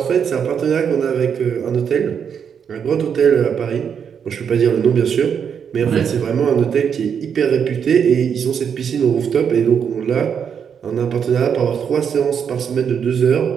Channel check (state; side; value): quieter; left; 7.4 dB